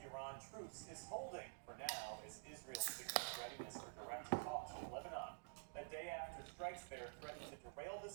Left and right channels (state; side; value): silent; left; digital silence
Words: truce is holding for now as Israel signals readiness for direct talks with Lebanon. A day after strikes there threatened to derail the